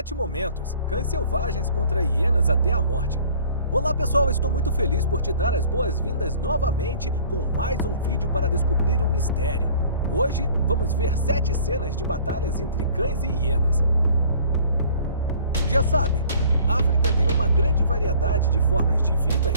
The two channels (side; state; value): both; inverted; correlation -0.51